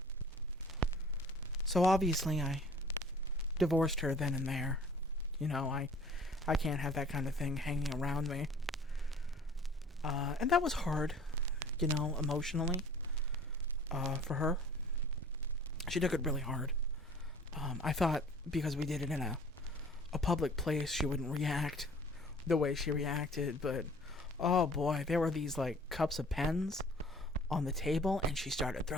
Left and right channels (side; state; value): both; normal; correlation 0.50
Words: So obviously I divorced her then and there. You know, I can't have that kind of thing hanging around me. And that was hard, you know, emotionally, for her. She took it really hard. I thought because we did it in a public place, she wouldn't react the way she reacted, but oh boy, there were these like cups of pens on the table and she started